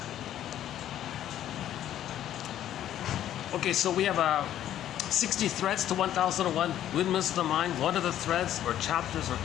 Okay, so we have 60 threads to 1001 Windmills of the Mind. What are the threads or chapters or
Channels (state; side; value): quieter; right; 11.6 dB